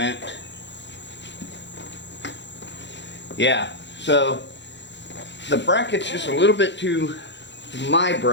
Yeah, so the bracket's just a little bit too, my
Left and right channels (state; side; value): late; right; 0.52 ms